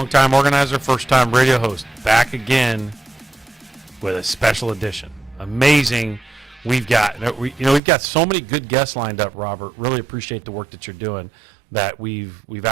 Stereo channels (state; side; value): drops out; left; at 7.8 s